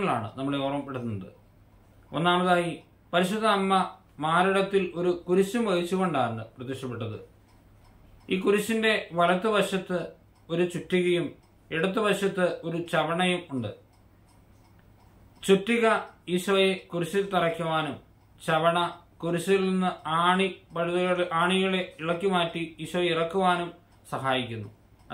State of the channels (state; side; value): identical; both; correlation 1.00